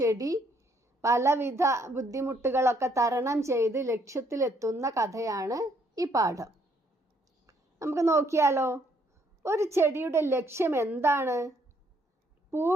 പലവിധ ബുദ്ധിമുട്ടുകളൊക്കെ തരണം ചെയ്ത് ലക്ഷ്യത്തിലെത്തുന്ന കഥയാണ് ഈ പാഠം. നമുക്ക് നോക്കിയാലോ. ഒരു ചെടിയുടെ ലക്ഷ്യം എന്താണ്?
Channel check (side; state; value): both; normal; correlation 0.68